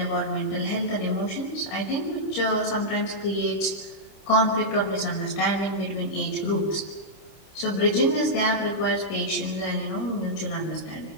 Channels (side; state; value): right; late; 26 ms